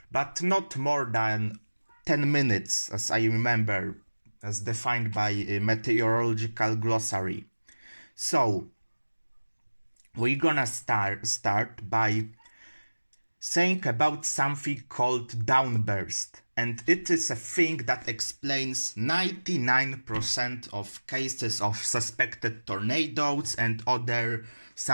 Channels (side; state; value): both; inverted; correlation -1.00